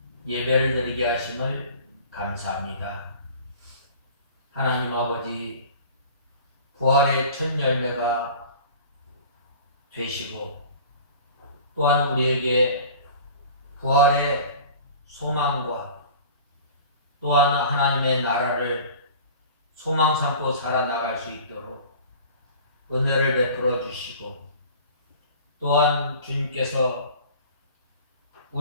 예배를 드리게 하심을 감사합니다. 하나님 아버지, 부활의 첫 열매가 되시고 또한 우리에게 부활의 소망과 또한 하나님의 나라를 소망 삼고 살아나갈 수 있도록 은혜를 베풀어 주시고 또한 주님께서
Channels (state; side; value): inverted; both; correlation -0.43